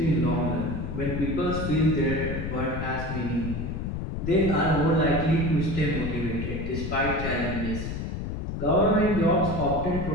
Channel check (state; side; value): noise; left; rumble, 4 dB below the sound